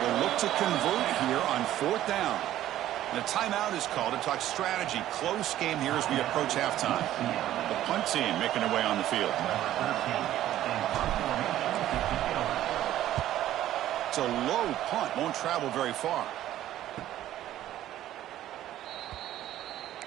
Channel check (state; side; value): quieter; left; 13.1 dB